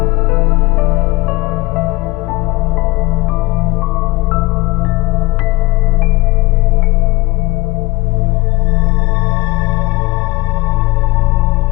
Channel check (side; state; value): right; quieter; 21.9 dB